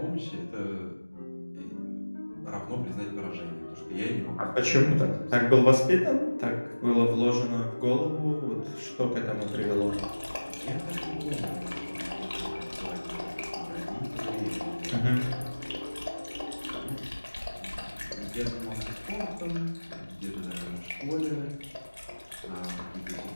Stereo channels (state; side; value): inverted; both; correlation -1.00